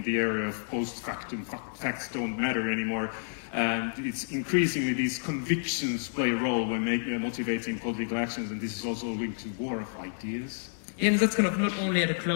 area of post-factum, facts don't matter anymore. And it's increasingly these convictions play a role when motivating political actions, and this is also linked to war of ideas. Yeah, and that's kind of not only at a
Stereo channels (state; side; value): silent; right; digital silence